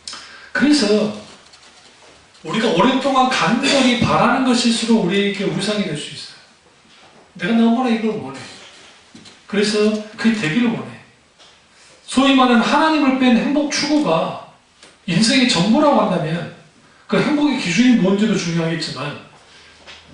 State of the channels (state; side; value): identical; both; correlation 1.00